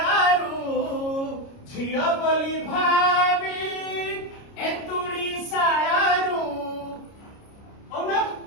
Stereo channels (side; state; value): right; late; 29 ms